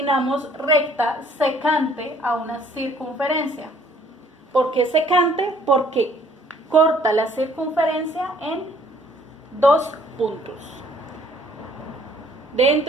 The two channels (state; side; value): normal; both; correlation 0.60